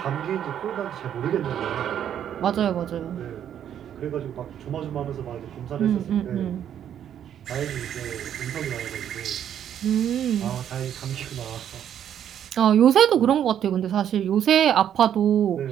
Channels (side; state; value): left; quieter; 9.7 dB